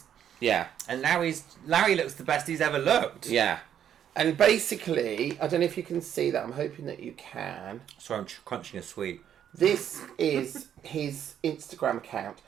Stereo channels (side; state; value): left; quieter; 9.6 dB